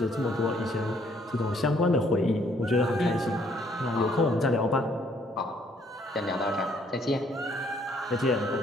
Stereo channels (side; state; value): both; normal; correlation 0.66